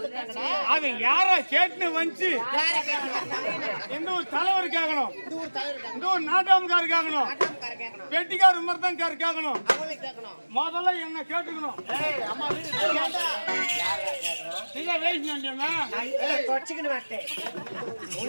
அது யாரா கேட்னு வந்து யார கேக்குறாங்க? எந்த ஒரு தலைவர் கேட்கணும், இந்த ஊர் தலைவர் கேக்குறாங்க. இந்த ஒரு நாட்டாமக்கார கேட்கணும், ஆட்டம்கார கேக்குறாங்க. வெட்டிக்கார மருதங்கார கேட்கணும். அவளை கேக்கணும். முதல்ல என்ன கேட்டுக்கணும். அம்மா வீடு ஏண்டா? நீங்க வேஸ்ட் பண்ணிட்டீங்க. தொடச்சுக்கிட்டு மாட்டேன்.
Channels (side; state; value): both; inverted; correlation -1.00